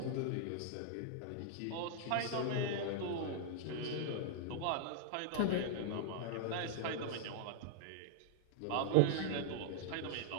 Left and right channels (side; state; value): both; different; correlation -0.01